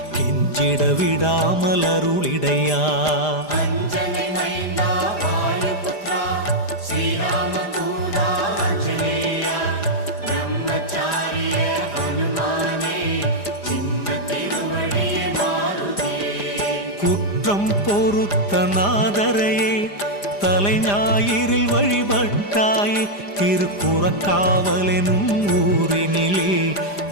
கெஞ்சிட விடாமல் அருளிடையா. அஞ்சனை மைந்தா வாயுபுத்ரா ஸ்ரீராமதூதா ஆஞ்சநேயா பிரம்மச்சாரிய ஹனுமானே சின்ன திருவடியே மாருதியே. குற்றம் பொறுத்த நாதரையே, தலை ஞாயிறில் வழிபட்டாயே. திருக்குறக்காவலெனும் ஊரினிலே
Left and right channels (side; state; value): right; late; 5.0 ms